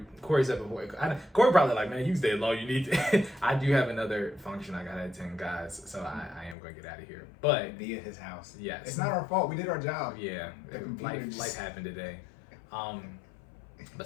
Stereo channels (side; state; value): right; drops out; at 6.6 s